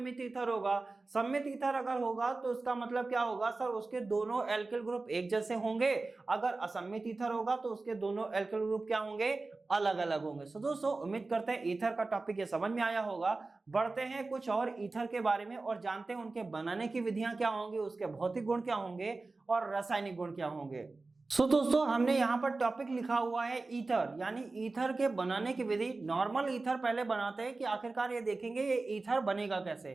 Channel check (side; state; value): left; quieter; 3.5 dB